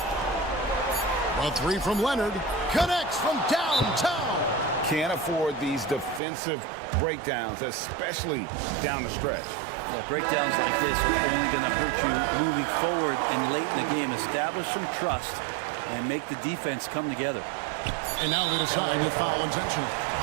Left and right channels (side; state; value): left; drops out; at 6.2 s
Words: A three from Leonard. Connects from downtown. Can't afford these defensive breakdowns, especially down the stretch. Yeah, breakdowns like this are only going to hurt you moving forward and late in the game. Establish some trust and make the defense come together. And now they decide to foul intentionally.